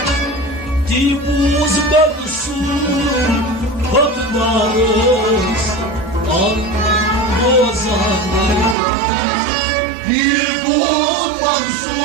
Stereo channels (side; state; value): left; drops out; at 8.8 s